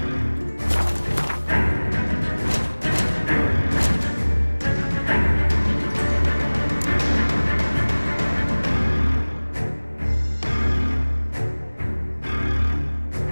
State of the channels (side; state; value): both; inverted; correlation -1.00